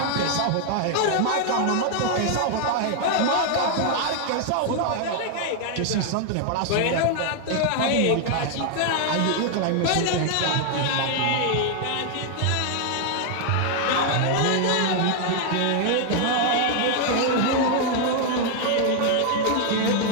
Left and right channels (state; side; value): different; both; correlation 0.00